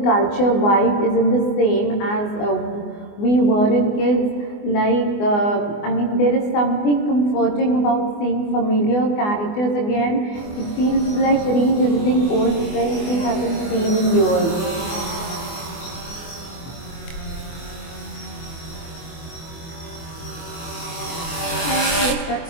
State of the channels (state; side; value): late; right; 24 ms